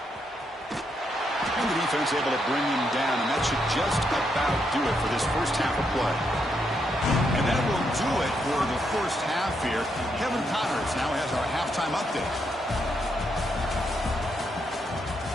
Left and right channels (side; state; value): both; normal; correlation 0.79